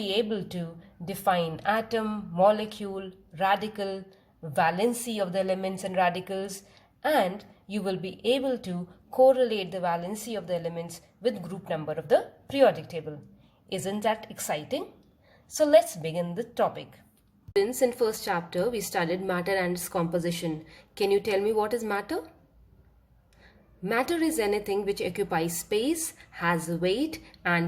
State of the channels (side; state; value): both; identical; correlation 1.00